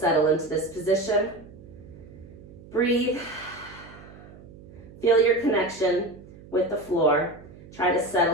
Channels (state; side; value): noise; right; hum, 19 dB below the sound